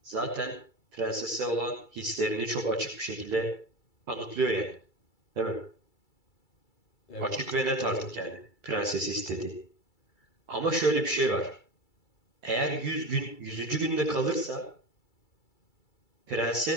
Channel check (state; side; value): late; right; 2.3 ms